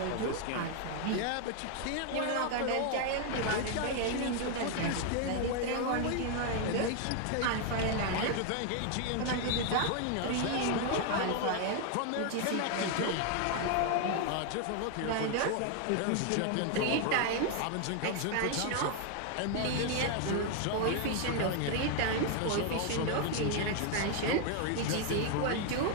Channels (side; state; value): both; different; correlation 0.00